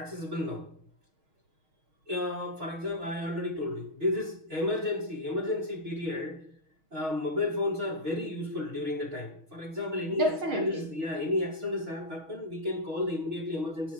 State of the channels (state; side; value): late; left; 6.3 ms